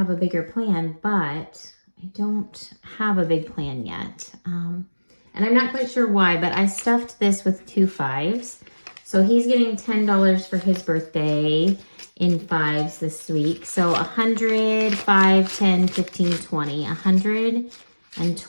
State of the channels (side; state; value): both; inverted; correlation -1.00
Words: a bigger plan, but I don't have a big plan yet. And I'm not quite sure why, but I stuffed this with 2 5s. So he's getting $10 for his birthday in 5s this week. So 100, 5, 10, 15, 20.